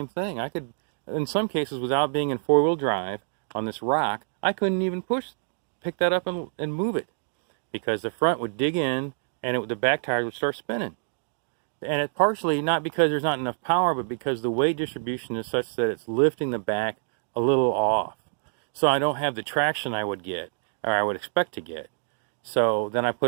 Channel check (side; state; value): left; silent; digital silence